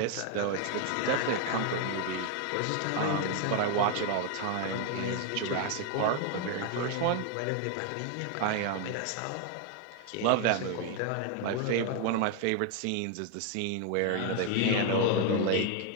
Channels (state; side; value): different; both; correlation 0.01